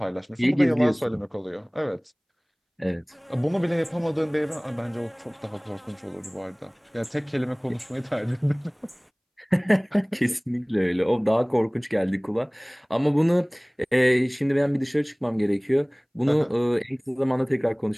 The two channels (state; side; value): identical; both; correlation 1.00